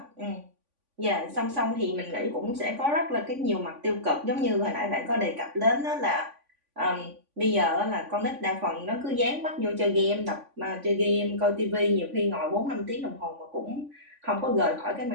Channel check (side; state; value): left; late; 3.5 ms